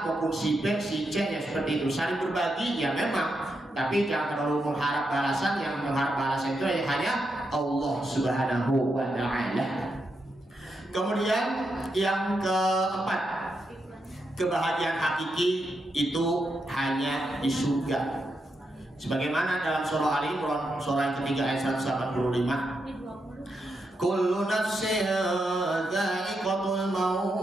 maupun si B, si C, ya seperti itu. Saling berbagi ya memang, tapi jangan terlalu mengharap balasan. Yang mengharap balasan itu hanya Allah Subhanahu wa Ta'ala. Kemudian yang keempat, kebahagiaan hakiki itu hanya di surga. Sebagaimana dalam surah Ali Imran surah yang ketiga ayat 185, kullu nafsin dha'iqatul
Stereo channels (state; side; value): normal; both; correlation 0.84